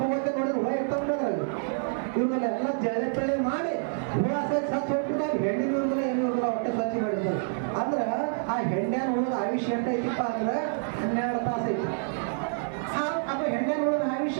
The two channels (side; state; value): left; silent; 60 dB below the other